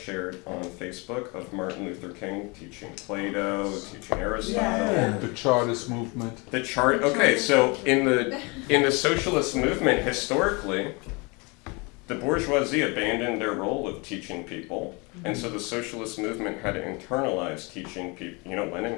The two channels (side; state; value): right; quieter; 28.8 dB